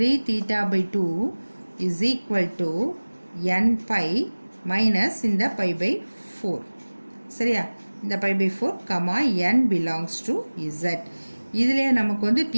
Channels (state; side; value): inverted; both; correlation -1.00